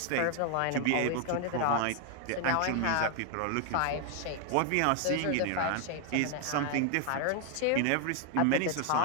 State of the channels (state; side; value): different; both; correlation 0.00